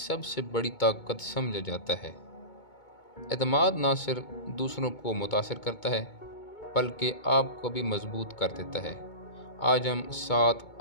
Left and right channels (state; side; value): late; right; 2.2 ms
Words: बड़ी ताकत समझा जाता है। एतमाद ना सिर्फ दूसरों को मुतासिर करता है, बल्कि आपको भी मजबूत कर देता है। आज हम 7